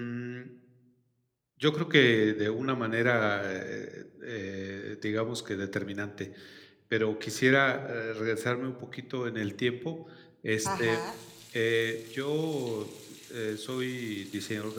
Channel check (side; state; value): both; identical; correlation 1.00